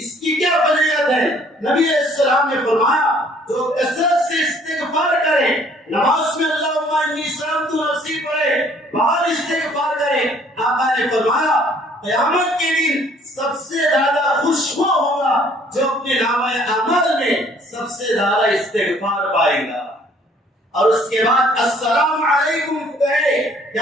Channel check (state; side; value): normal; both; correlation 0.59